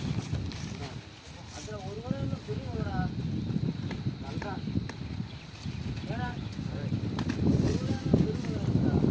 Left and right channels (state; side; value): identical; both; correlation 1.00